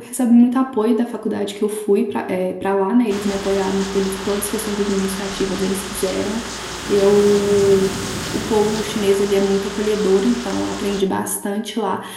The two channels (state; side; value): identical; both; correlation 1.00